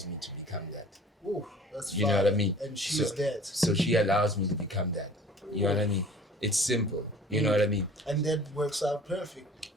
me to become that. Ooh, that's you know what I mean? And she's that. So she allows me to become that. You know what I mean? It's simple. You know what I mean? And that works out perfect.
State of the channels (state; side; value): normal; both; correlation 0.48